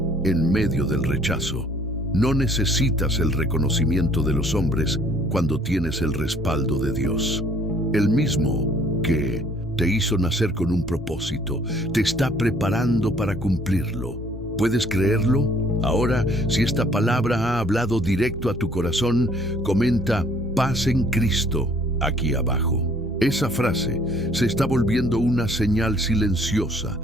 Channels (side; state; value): both; normal; correlation 0.59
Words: en medio del rechazo. No necesitas el reconocimiento de los hombres cuando tienes el respaldo de Dios. El mismo que te hizo nacer con un propósito, te está preparando para cumplirlo. ¿Puedes creerlo? Ahora, si esta palabra ha hablado directo a tu corazón, comenta "paz en Cristo" aquí abajo. Esa frase se está volviendo una señal silenciosa